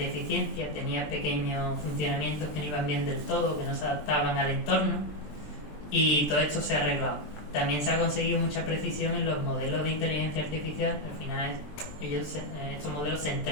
tenían pequeños funcionamientos que no iban bien del todo, que no se adaptaban al entorno, y todo esto se ha arreglado. También se ha conseguido mucha precisión en los modelos de inteligencia artificial. Al final estos modelos se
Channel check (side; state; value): right; late; 20 ms